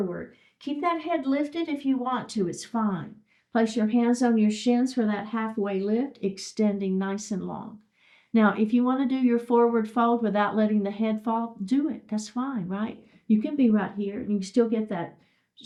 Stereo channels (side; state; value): both; identical; correlation 1.00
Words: Keep that head lifted if you want to. It's fine. Place your hands on your shins for that halfway lift, extending nice and long. Now, if you want to do your forward fold without letting the head fall, do it. That's fine, right? You can be right here, and you can still get that